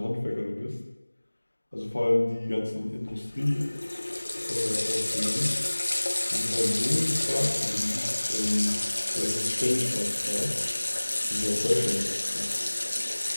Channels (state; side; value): inverted; both; correlation -1.00